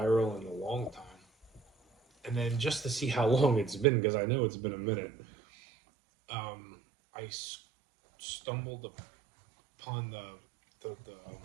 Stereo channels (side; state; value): left; drops out; at 3.9 s